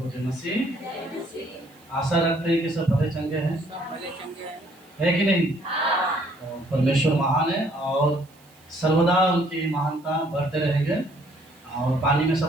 जय मसीह। आशा रखते हैं कि सब भले चंगे हैं, है कि नहीं? तो परमेश्वर महान है और सर्वदा उनकी महानता बढ़ते रहेंगे। और पानी में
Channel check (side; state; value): right; noise; hiss, 29 dB below the sound